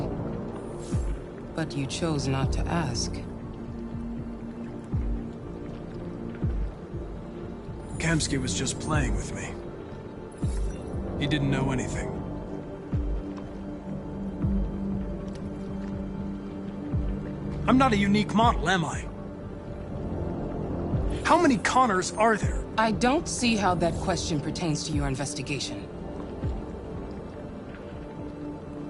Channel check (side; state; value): both; identical; correlation 1.00